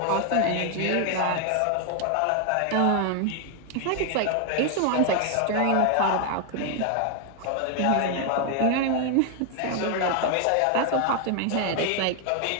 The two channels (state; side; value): different; both; correlation 0.01